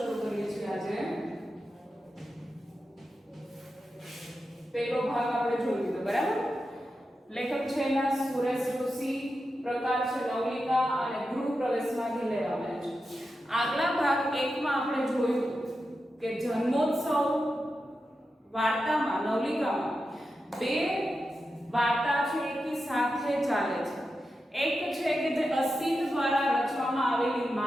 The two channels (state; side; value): normal; both; correlation 0.90